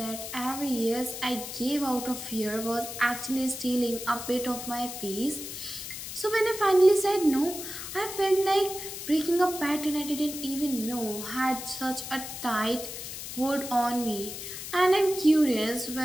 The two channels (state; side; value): noise; left; hiss, 8 dB below the sound